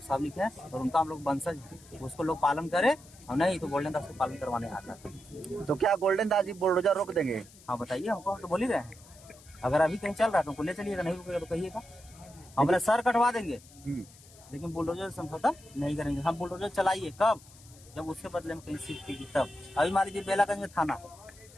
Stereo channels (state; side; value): noise; left; hiss, 23 dB below the sound